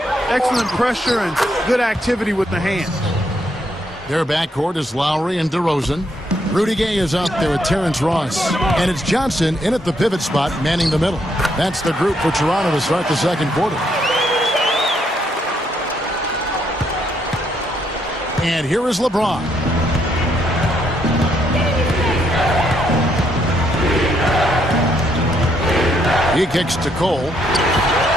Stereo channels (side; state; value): both; normal; correlation 0.74